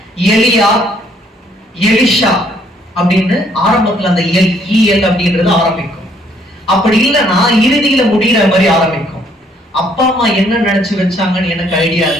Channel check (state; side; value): normal; both; correlation 0.66